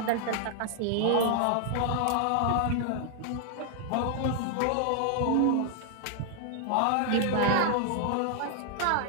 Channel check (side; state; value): both; different; correlation 0.00